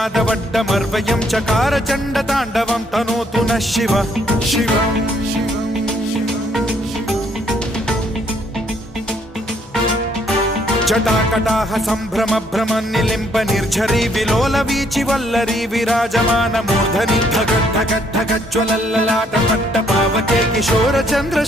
चकार चण्डताण्डवं तनोतु नः शिव शिव जटाकटाह सम्भ्रम भ्रम निलिम्ब निर्झरी विलोल वीचि वल्लरी विराजमान मूर्धनि धगद्धगद्धगज्ज्वलल्ललाट पट्ट पावके किशोर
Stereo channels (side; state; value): both; normal; correlation 0.68